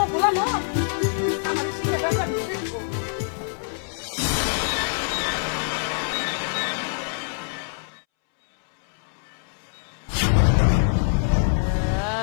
ভোলানো আমার শিখাটা জানি।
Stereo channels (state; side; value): silent; right; 62 dB below the other